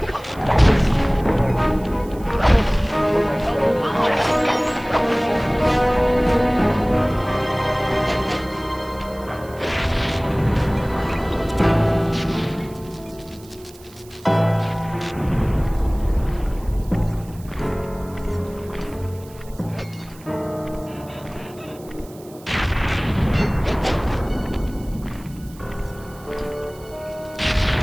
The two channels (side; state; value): right; noise; hiss, 23 dB below the sound